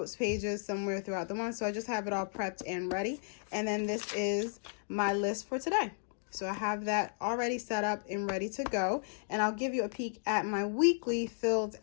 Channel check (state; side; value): silent; right; digital silence